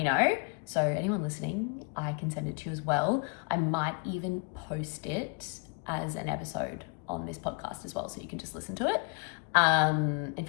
know. So anyone listening, I can send it to you as well. I might even post it as an episode on this podcast as well, so you can just listen to it. In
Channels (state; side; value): quieter; right; 34.2 dB